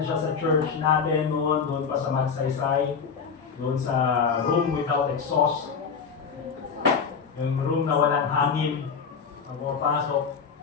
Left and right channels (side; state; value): right; quieter; 6.0 dB